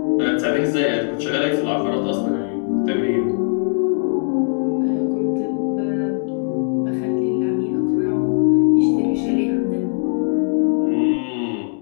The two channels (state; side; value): silent; right; digital silence